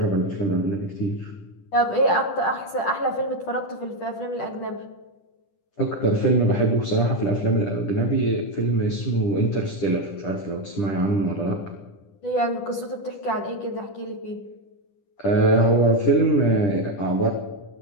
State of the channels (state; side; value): late; right; 10 ms